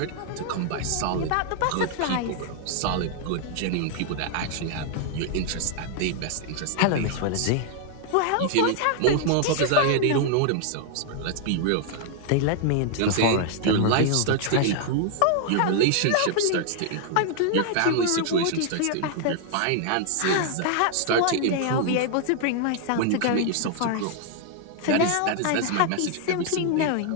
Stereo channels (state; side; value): different; both; correlation 0.00